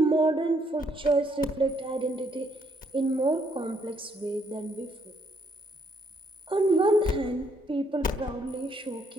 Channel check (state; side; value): normal; both; correlation 0.71